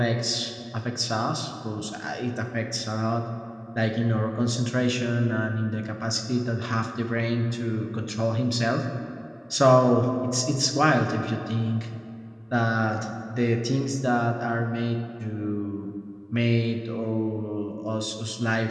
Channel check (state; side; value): identical; both; correlation 1.00